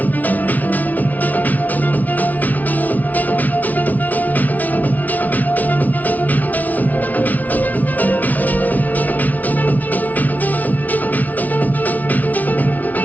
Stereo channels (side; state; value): right; late; 0.076 ms